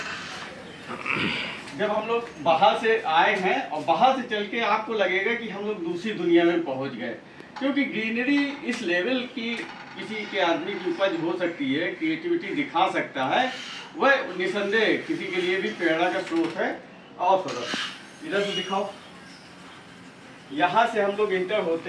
जब हम लोग बाहर से आए हैं और बाहर से चल के आपको लगेगा कि हम लोग दूसरी दुनिया में पहुंच गए, क्योंकि ग्रीनरी इस लेवल की किसी के आदमी की उपज हो सकती है, क्रिएटिविटी दिखा सकता है, वह निसंदेह किसी के लिए भी प्रेरणा का स्रोत है। और थोड़ा इधर से दिखाओ। यहाँ से हम लोग इंटर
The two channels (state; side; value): identical; both; correlation 1.00